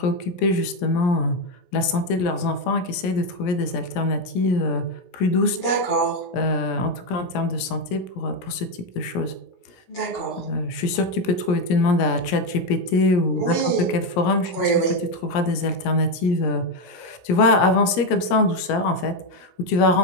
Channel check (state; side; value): late; right; 17 ms